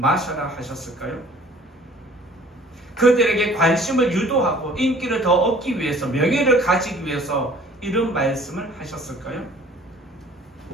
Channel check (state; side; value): normal; both; correlation 0.52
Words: 하셨을까요? 그들에게 관심을 유도하고 인기를 더 얻기 위해서 명예를 가지기 위해서 이런 말씀을 하셨을까요?